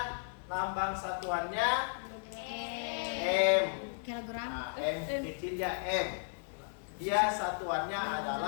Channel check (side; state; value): right; silent; digital silence